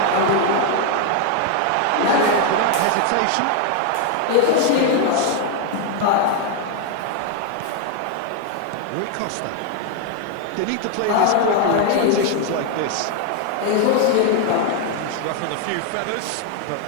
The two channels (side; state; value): both; different; correlation 0.01